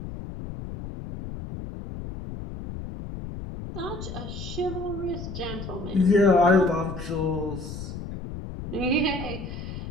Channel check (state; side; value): noise; left; rumble, 8 dB below the sound